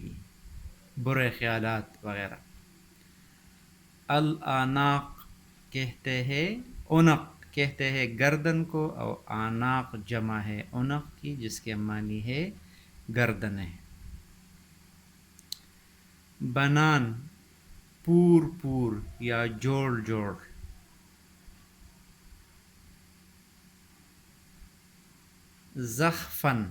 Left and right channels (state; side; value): identical; both; correlation 1.00